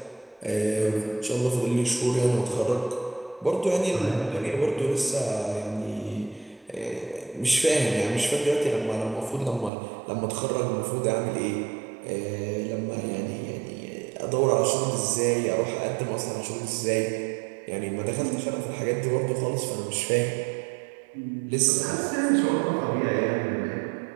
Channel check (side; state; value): left; drops out; at 9.7 s